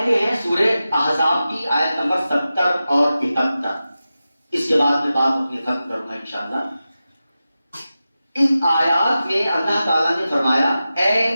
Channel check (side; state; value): both; inverted; correlation -0.93